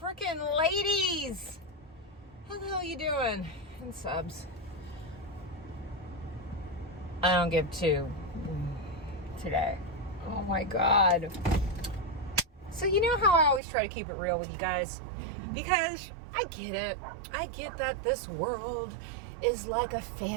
ladies. How the hell you doing? And subs. I don't give two today. Oh my God. So you know how I always try to keep it real with you guys? Because I get it. I get that this world is like a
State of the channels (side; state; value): left; drops out; at 13.6 s